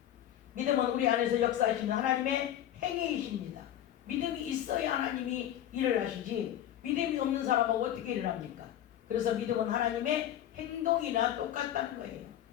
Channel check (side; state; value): right; quieter; 11.5 dB